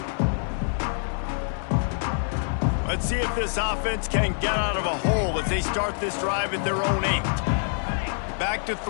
Let's see if this offense can get out of a hole as they start this drive at their own 8. Back to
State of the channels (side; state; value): right; silent; digital silence